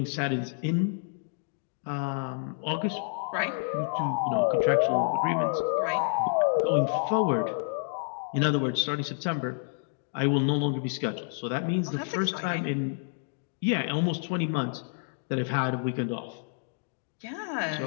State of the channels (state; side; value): silent; right; digital silence